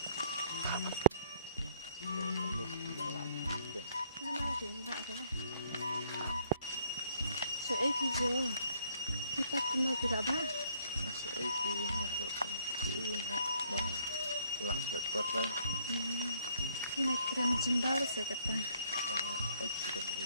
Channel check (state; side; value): inverted; both; correlation -0.65